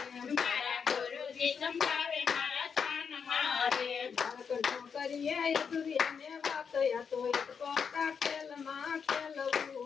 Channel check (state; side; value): quieter; right; 6.4 dB